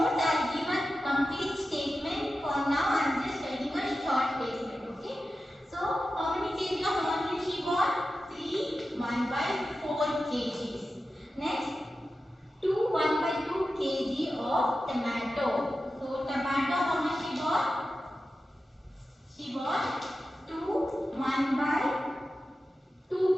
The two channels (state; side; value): normal; both; correlation 0.92